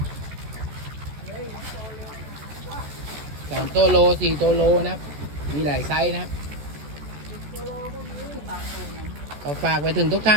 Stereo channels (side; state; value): left; late; 14 ms